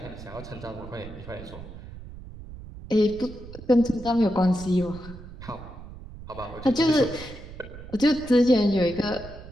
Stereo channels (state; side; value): noise; right; rumble, 14 dB below the sound